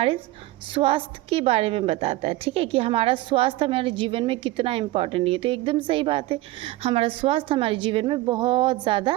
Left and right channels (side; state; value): left; quieter; 17.8 dB